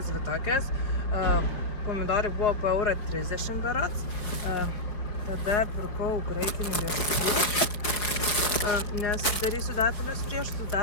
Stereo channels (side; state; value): right; late; 5.1 ms